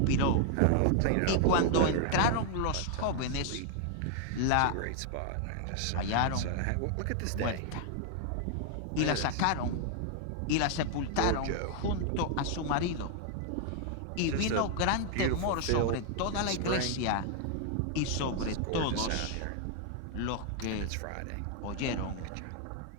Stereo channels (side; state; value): both; different; correlation 0.00